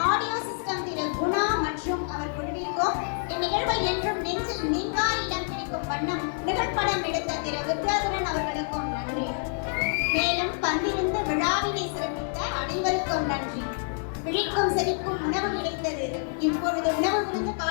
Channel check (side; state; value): right; silent; 60 dB below the other